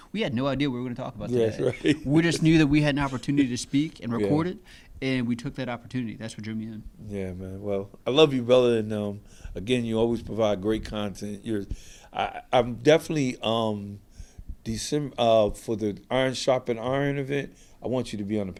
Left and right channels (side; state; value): both; identical; correlation 1.00